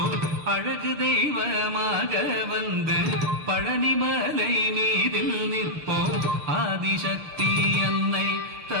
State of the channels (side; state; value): left; late; 6.5 ms